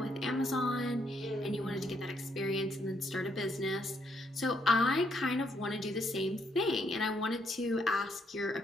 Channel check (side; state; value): both; normal; correlation 0.74